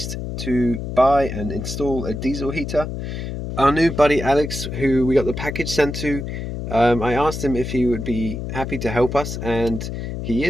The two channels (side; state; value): left; noise; hum, 6 dB below the sound